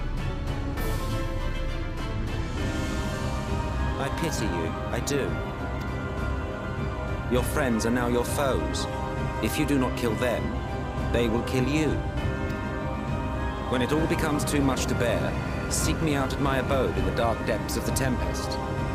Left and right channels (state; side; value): identical; both; correlation 1.00